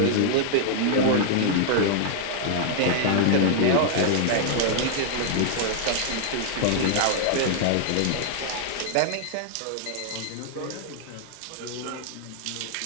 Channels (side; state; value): both; different; correlation -0.01